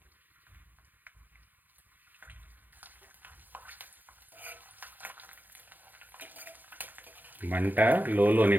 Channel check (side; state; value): left; late; 0.086 ms